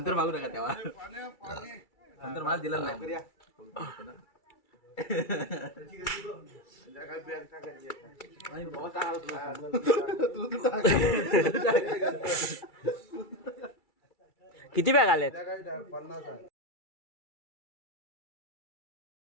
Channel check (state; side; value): late; right; 2.3 ms